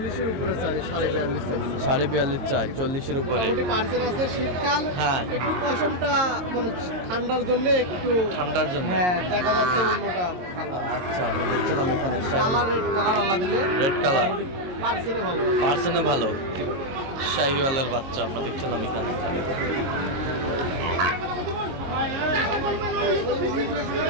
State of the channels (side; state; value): left; late; 22 ms